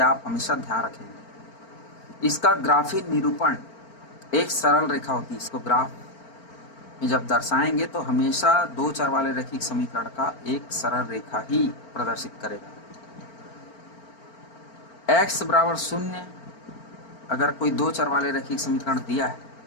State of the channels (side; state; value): right; late; 4.4 ms